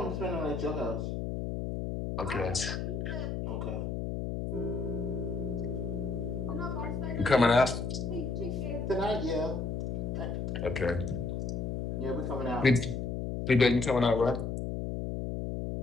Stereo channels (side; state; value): left; noise; hum, 2 dB below the sound